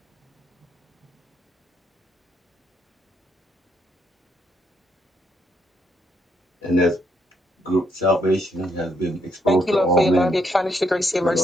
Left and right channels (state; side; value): normal; both; correlation 0.74